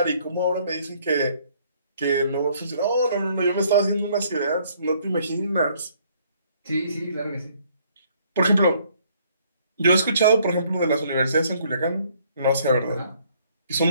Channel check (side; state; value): both; inverted; correlation -0.63